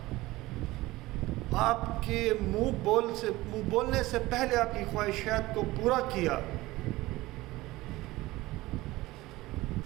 آپ کے منہ بولنے سے پہلے آپ کی خواہشات کو پورا کیا،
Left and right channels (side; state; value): left; quieter; 18.9 dB